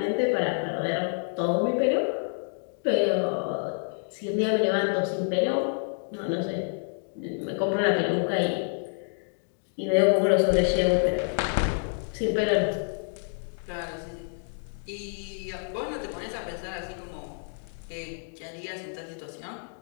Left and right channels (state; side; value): silent; right; 58 dB below the other